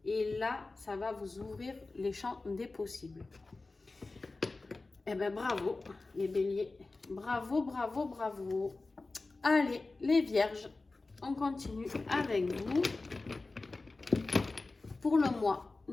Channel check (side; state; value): right; quieter; 3.4 dB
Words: Et là, ça va vous ouvrir les champs des possibles. Eh ben, bravo, les béliers. Bravo, bravo, bravo. Allez, les vierges, on continue avec vous. Pour le mois,